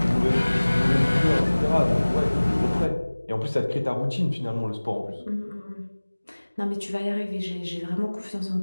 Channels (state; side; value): inverted; both; correlation -1.00